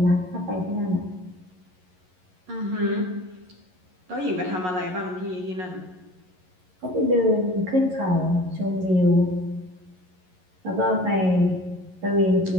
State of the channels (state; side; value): late; left; 11 ms